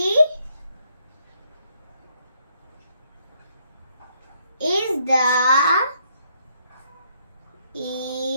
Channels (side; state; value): both; inverted; correlation -0.72